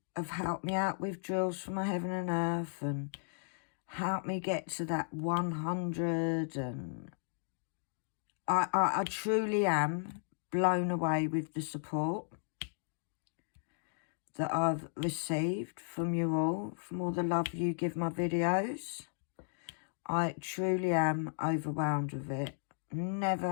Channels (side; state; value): right; silent; digital silence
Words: have helped me out with drills for my Heaven and Earth and helped me get to that 100. And I truly am blown away with the support that I've received from you all, from all the love you give my videos. I truly am overwhelmed with it.